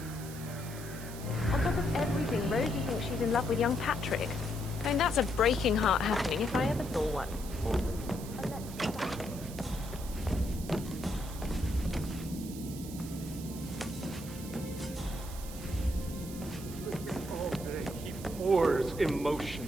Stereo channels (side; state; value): right; noise; hiss, 14 dB below the sound